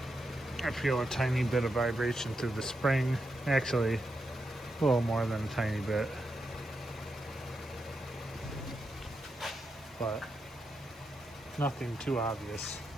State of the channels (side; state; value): both; normal; correlation 0.85